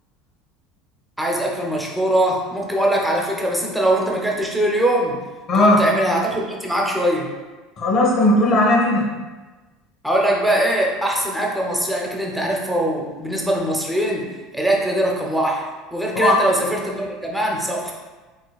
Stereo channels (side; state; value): both; normal; correlation 0.58